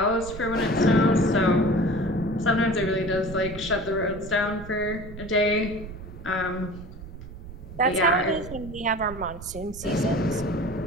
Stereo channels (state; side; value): noise; right; rumble, 13 dB below the sound